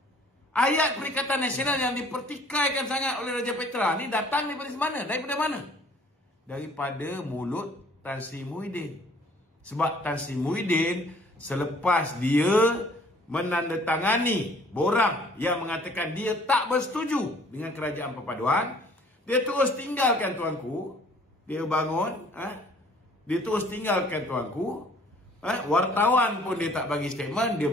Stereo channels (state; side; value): normal; both; correlation 0.56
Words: Ayat Perikatan Nasional yang dipertikaikan sangat oleh Raja Petra ni datang daripada mana? Daripada mana? Daripada mulut Tan Sri Muhyiddin. Sebab Tan Sri Muhyiddin selepas dia menandatangani borang yang mengatakan dia tak bersetuju dengan kerajaan perpaduan, dia terus tinggalkan tuanku. Dia bangun, dia terus tinggalkan tuanku. Wartawan pun dia tak bagi statement. Dia